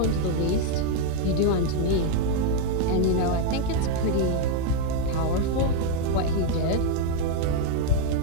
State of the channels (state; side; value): different; both; correlation 0.01